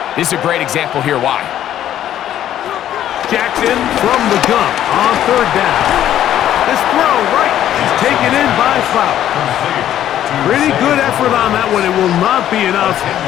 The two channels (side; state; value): right; quieter; 11.5 dB